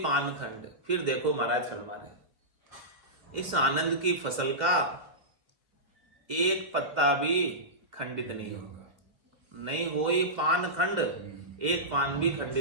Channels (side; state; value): left; late; 2.1 ms